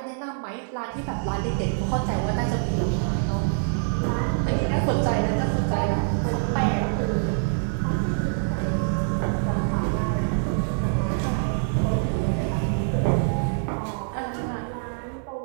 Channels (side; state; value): left; silent; 57 dB below the other